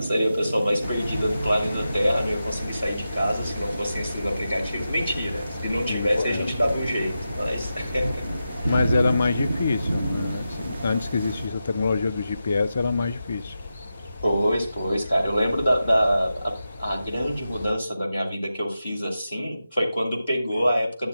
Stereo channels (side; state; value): both; inverted; correlation -0.90